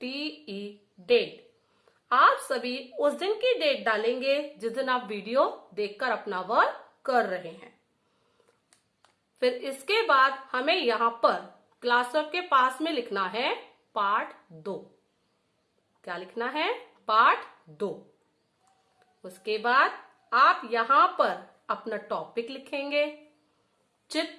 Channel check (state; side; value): identical; both; correlation 1.00